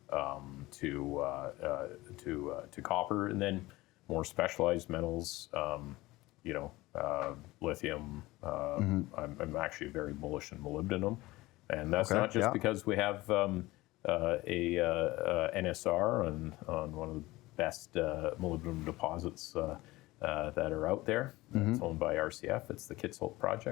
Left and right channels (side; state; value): right; quieter; 19.4 dB